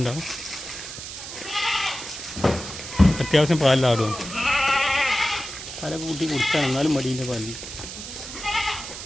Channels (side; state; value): right; noise; hiss, 10 dB below the sound